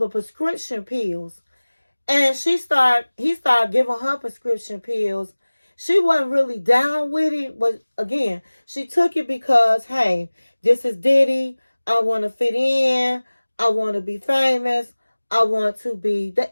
prescription pills. And he started giving her prescription pills. She wasn't really down with it, but again, she took it because, hey, this is Diddy. I want to fit in. I want to be famous. I want to be the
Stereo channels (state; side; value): inverted; both; correlation -1.00